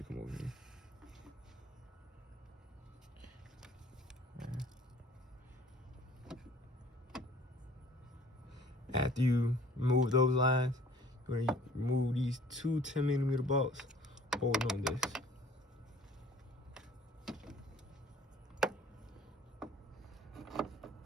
come over here. After you remove those lines, you're going to remove these two 10mm bolts holding on this.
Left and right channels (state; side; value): normal; both; correlation 0.53